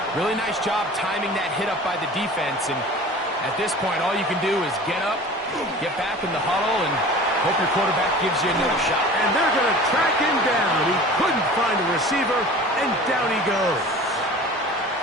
really nice job timing that hit up by the defense. And at this point, all you can do is get up, get back in the huddle, and hope your quarterback gives you another shot. And they're going to track him down. He couldn't find a receiver, and down he goes.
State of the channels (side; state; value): both; normal; correlation 0.40